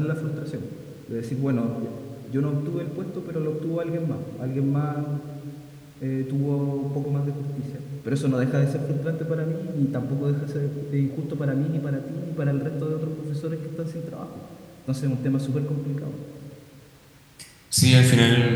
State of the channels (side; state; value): both; identical; correlation 1.00